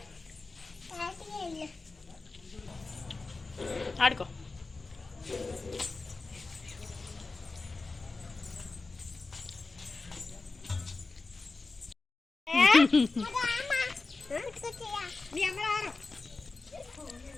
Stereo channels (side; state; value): right; quieter; 3.7 dB